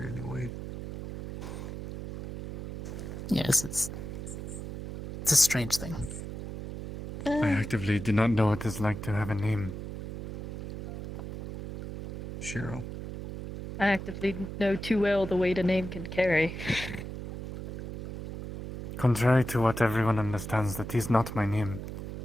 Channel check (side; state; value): right; noise; hum, 8 dB below the sound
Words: any weight. Yes, it's a strange thing. I actively do not know what it's like to have a name. Shiro. I actively know too well the weight a name can carry. Contrary to what everyone understands, that is not my name.